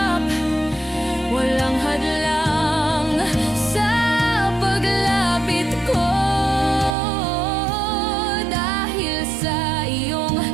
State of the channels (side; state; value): left; drops out; at 7.0 s